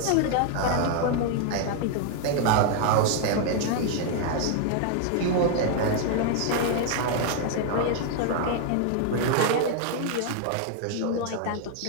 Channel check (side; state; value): both; different; correlation 0.00